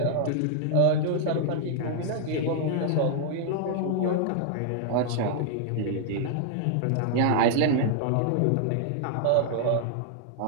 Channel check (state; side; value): different; both; correlation -0.01